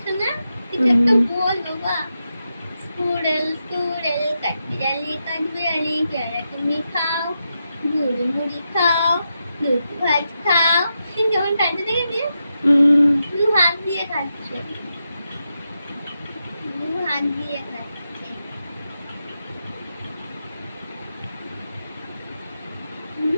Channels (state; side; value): inverted; both; correlation -0.87